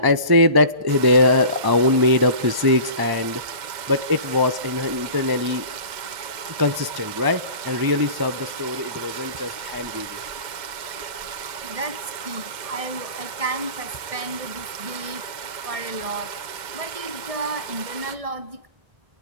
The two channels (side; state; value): left; late; 2.0 ms